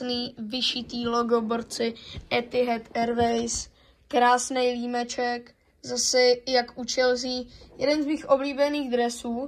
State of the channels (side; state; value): both; identical; correlation 1.00